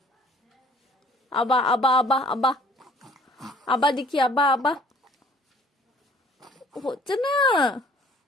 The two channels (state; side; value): normal; both; correlation 0.55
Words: আবা আবা আবা আবা আবা দেখি, আবা আবা, হচ্ছে না।